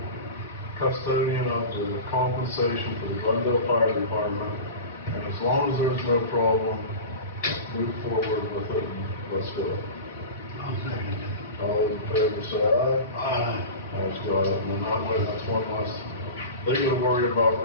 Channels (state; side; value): inverted; both; correlation -0.31